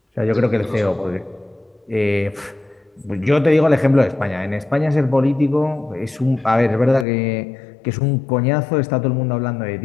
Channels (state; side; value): drops out; right; at 7.1 s